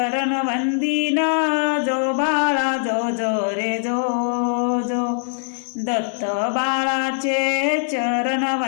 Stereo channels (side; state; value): right; silent; digital silence